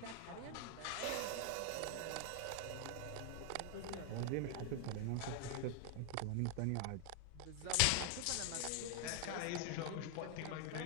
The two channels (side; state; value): both; different; correlation 0.00